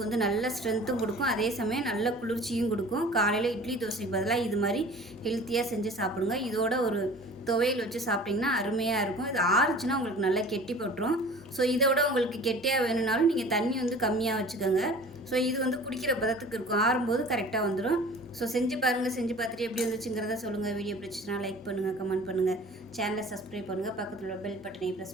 வந்து நல்ல ஸ்ட்ரென்த்தும் கொடுக்கும், அதே சமயம் நல்ல குளிர்ச்சியும் கொடுக்கும். காலையில் இட்லி தோசைக்கு பதிலாக இது மாதிரி ஹெல்த்தியாக செஞ்சு சாப்பிடுங்க. இதோட ஒரு துவையல் வச்சு சாப்பிட்டிங்கன்னா அருமையாக இருக்கும். இது ஆறுச்சுன்னா உங்களுக்கு நல்லா கெட்டி போட்டுரும். ஸோ இதை விட உங்களுக்கு கெட்டியாக வேணும்னாலும் நீங்கள் தண்ணி வந்து கம்மியாக வச்சுக்கோங்க. ஸோ இது வந்து குடிக்கிற பதத்துக்கு இருக்கும். ஆறும்போது கரெக்டாக வந்துடும். ஸோ செஞ்சு பாருங்கள். செஞ்சு பார்த்துட்டு எப்படி வந்துச்சுங்கிறத சொல்லுங்கள். வீடியோ பிடிச்சிச்சுன்னா லைக் பண்ணுங்கள், கமெண்ட் பண்ணுங்கள், சேனலை சப்ஸ்கிரைப் பண்ணுங்கள், பக்கத்தில் உள்ள பெல் பட்டனை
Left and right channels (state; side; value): normal; both; correlation 0.44